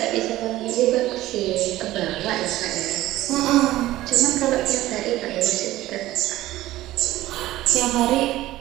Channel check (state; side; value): quieter; left; 15.9 dB